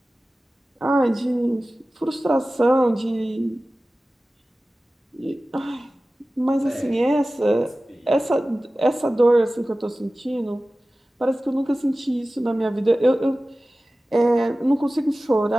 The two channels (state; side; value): normal; both; correlation 0.96